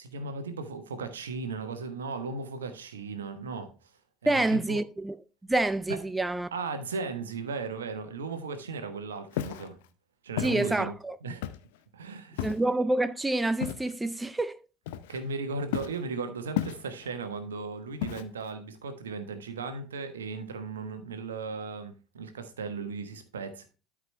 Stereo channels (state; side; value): normal; both; correlation 0.48